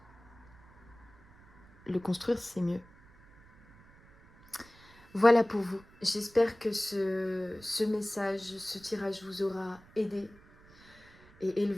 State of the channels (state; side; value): noise; right; rumble, 25 dB below the sound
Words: Le construire, c'est mieux. Voilà pour vous. J'espère que ce message, ce tirage vous aura aidé et